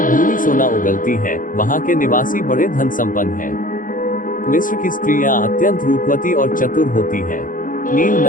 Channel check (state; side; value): late; right; 0.39 ms